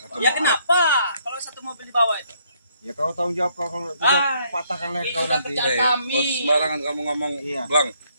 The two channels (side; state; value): both; inverted; correlation -0.69